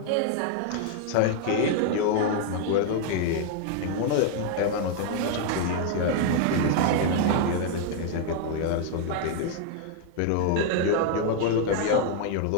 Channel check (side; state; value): both; different; correlation 0.00